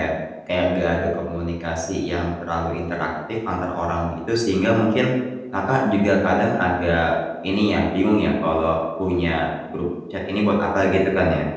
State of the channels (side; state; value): both; identical; correlation 1.00